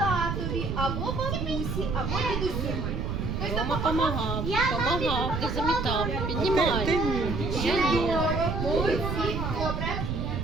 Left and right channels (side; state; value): right; noise; rumble, 2 dB below the sound